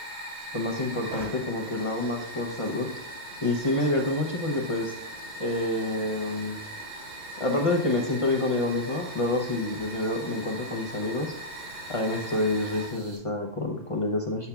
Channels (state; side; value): normal; both; correlation -0.11